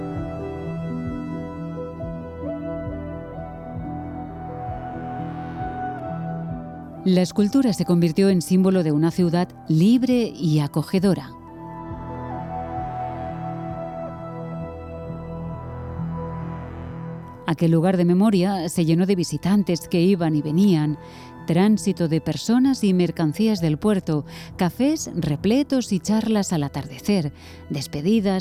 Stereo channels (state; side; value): identical; both; correlation 1.00